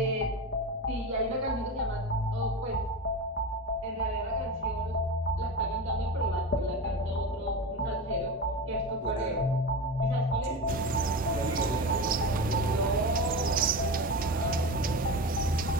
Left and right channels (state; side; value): normal; both; correlation 0.25